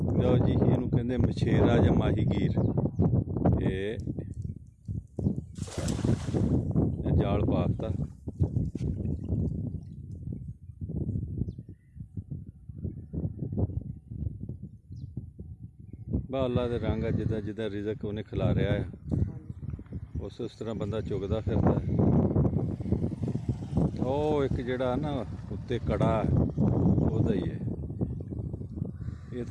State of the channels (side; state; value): both; identical; correlation 1.00